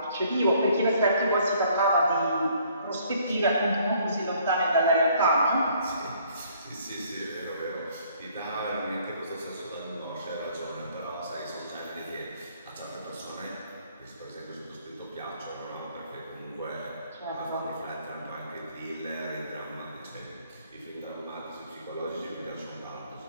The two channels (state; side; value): inverted; both; correlation -0.62